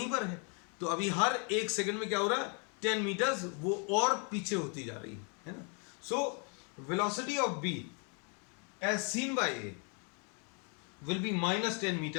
पर है. तो अभी हर 1 सेकंड में क्या हो रहा है, 10 मीटर्स वो और पीछे होती जा रही है ना. So velocity of B as seen by A will be minus 10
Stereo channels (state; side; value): quieter; right; 37.4 dB